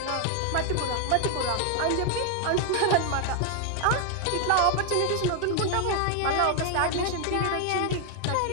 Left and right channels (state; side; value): different; both; correlation 0.00